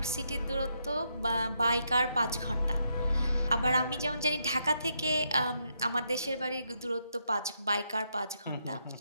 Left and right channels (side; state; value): both; inverted; correlation -0.79